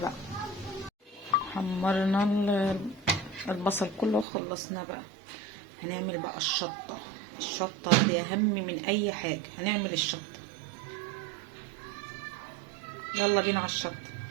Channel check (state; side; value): drops out; left; at 4.2 s